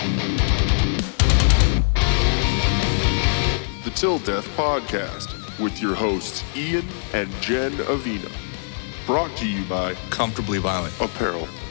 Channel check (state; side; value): silent; right; 64 dB below the other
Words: The Till Death Podcast with your hosts Ian and Jenn Avina. Brought to you by Comfortably Violent. Apparel.